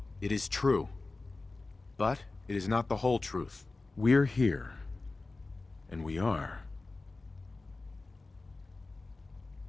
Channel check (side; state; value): right; quieter; 3.4 dB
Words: It is true. But it is not the whole truth. We're here. And we are.